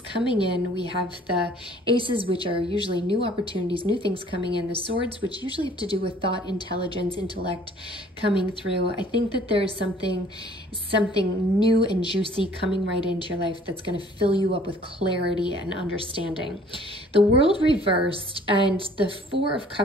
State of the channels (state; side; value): normal; both; correlation 0.55